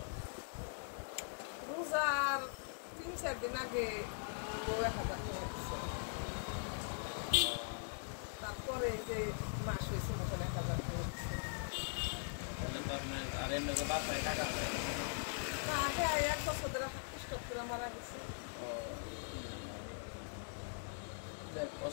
রোজার 3-4 দিন আগে 1000 টাকা দিচ্ছে। তারপরে যে মাস হয়েছে তখন 1000 টাকা দিচ্ছে। তাহলে তো আপনার আর এমনি তো বাসায় টাকা দেয় না, আগে 1 বছর ধরে স্টক করে মারা গেছে।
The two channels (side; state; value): right; silent; digital silence